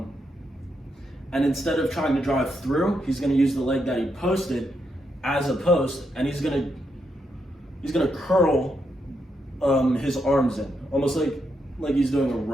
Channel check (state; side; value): normal; both; correlation 0.81